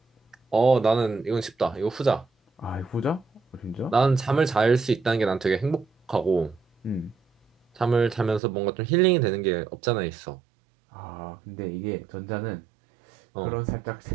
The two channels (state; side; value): drops out; left; at 8.4 s